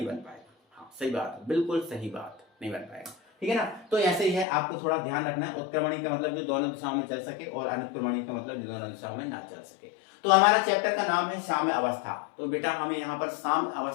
बन पाएगा। हाँ सही बात है, बिल्कुल सही बात, नहीं बन पाएगा, ठीक है ना। तो ऐसे ही है, आपको थोड़ा ध्यान रखना है। उत्क्रमणीय का मतलब जो दोनों दिशाओं में चल सके, और अनुक्रमणीय का मतलब जो दोनों दिशाओं में ना चल सके। तो हमारा चैप्टर का नाम है साम्य अवस्था। तो बेटा हमें यहाँ पर साम्य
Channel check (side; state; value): right; drops out; at 4.5 s